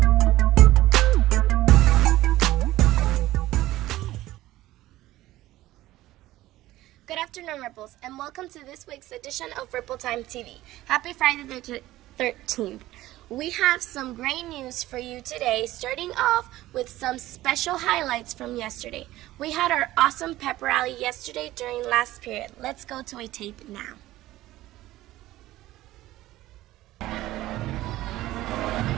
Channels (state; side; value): quieter; left; 16.0 dB